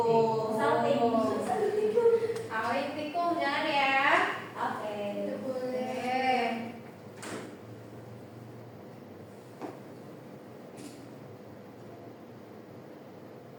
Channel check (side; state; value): both; identical; correlation 1.00